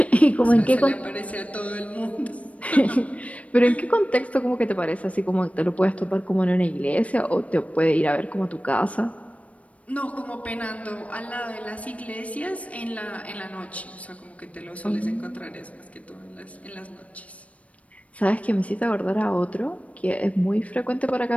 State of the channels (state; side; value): late; right; 0.066 ms